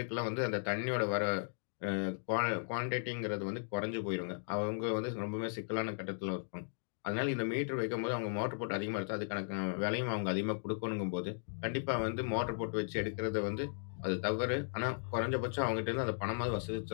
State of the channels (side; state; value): right; silent; digital silence